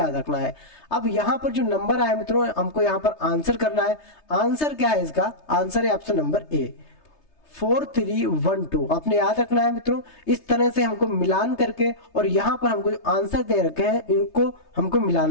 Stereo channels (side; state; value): right; late; 3.3 ms